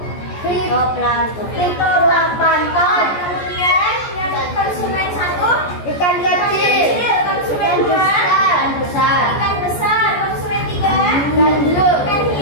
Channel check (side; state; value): right; late; 14 ms